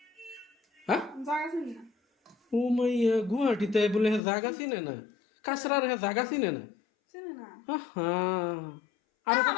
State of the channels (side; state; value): right; drops out; at 4.2 s